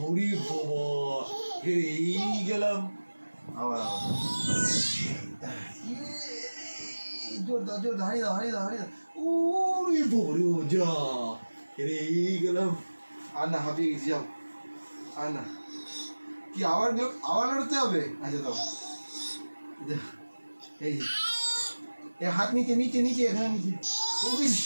বাবা এই গেলাম আবার আবার জোরদার জোরদার হারিয়ে দাও হারিয়ে দাও হারিয়ে দাও ওরে বাবারি ও যা এই গেলাম আর না হাঁপিয়ে গেছি যাও আর না কি আবার আবার লড়তে হবে আচ্ছা দাও এই যে হাত নিচে নিচে নিচে এখানে নিচে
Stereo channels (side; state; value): both; inverted; correlation -1.00